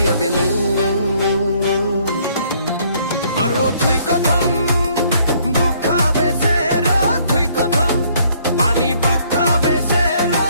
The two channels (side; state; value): both; inverted; correlation -0.64